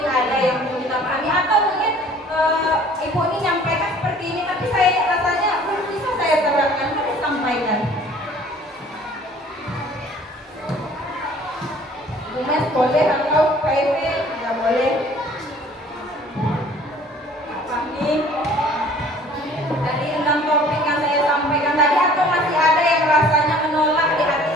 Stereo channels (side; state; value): both; normal; correlation 0.52